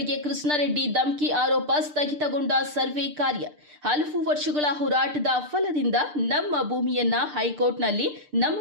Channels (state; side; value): late; left; 6.7 ms